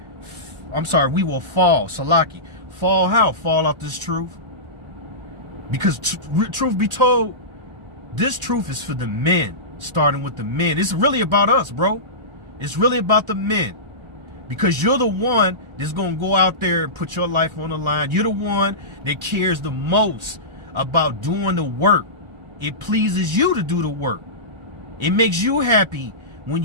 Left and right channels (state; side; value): late; left; 1.3 ms